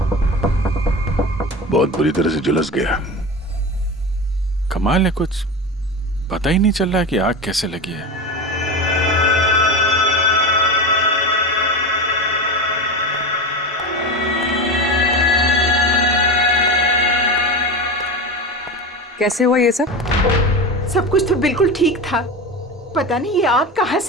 बहुत बुरी तरह से झुलस गया। कमाल है, कुछ पता ही नहीं चल रहा है कि आग कैसे लगी है। कैसे हुआ ये सब? सब कुछ तो बिल्कुल ठीक था, पता नहीं ये आग कहाँ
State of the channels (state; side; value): normal; both; correlation 0.24